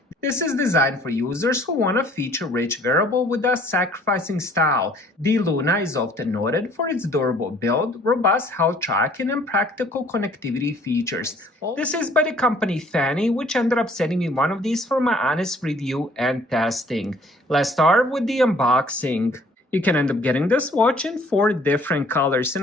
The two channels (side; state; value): both; normal; correlation 0.57